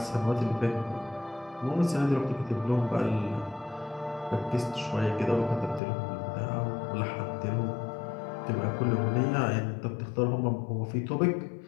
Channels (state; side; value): drops out; right; at 5.8 s